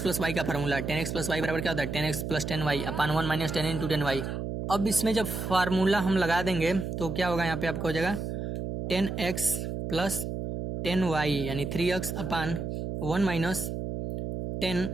प्लस वाई का formula. tan x plus y बराबर क्या होता है, tan x plus 10y upon 1 minus 10 into 10y। अब इसमें जब फार्मूला हम लगा देंगे तो क्या होगा, यहाँ पे आपका हो जाएगा tan x प्लस 10y यानी 3x अपान 1 माइनस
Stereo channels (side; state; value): right; noise; hum, 4 dB below the sound